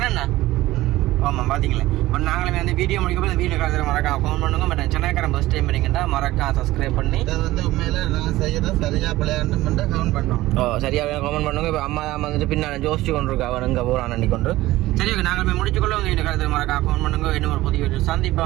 என்ன ஆமாம் பார்த்தீங்களா இப்போ நாங்களுமே வந்து வீடியோ முடிக்கப்போ இந்த வீடியோ கருத்து மறக்காம கமெண்ட் பண்ணுங்க பட் சென்னைக்காரன் ஃபஸ்ட் டைம் பண்ணிங்கன்னா மறக்காம சப்ஸ்கிரைப் பண்ணி இதை வந்து உண்மையில நான் செய்யறத சரியா பிள்ளையாண்டு மட்டும் கமெண்ட் பண்ணோம் சரியாக கமெண்ட் பண்ணுங்க இப்போ அம்மா தான் வந்துட்டு பின்னால் ஜோசிச்சு கொண்டு இருக்கா அவன் இங்கே போகிறான் அண்டி கொண்டு சரி ஓகே நாங்கள் போய் முடிச்சுக்கொள்ள உங்கள் வீடியோ கருத்து மறக்காம கமெண்ட் பண்ணுங்க இன்னும் ஒரு புதிய வீடியோ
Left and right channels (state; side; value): quieter; left; 17.1 dB